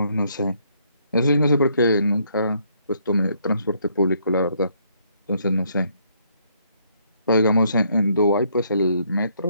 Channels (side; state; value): both; inverted; correlation -0.70